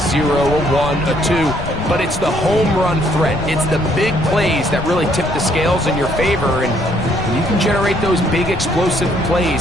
a 1, a 2, but it's the home run threat. It's the big plays that really tip the scales in your favor, and when you can generate those big explosive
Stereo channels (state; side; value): noise; left; rumble, 9 dB below the sound